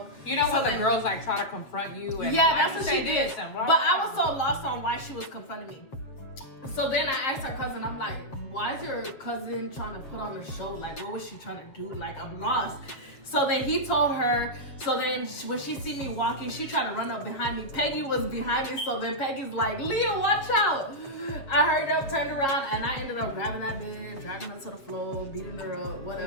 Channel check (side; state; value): right; late; 7.4 ms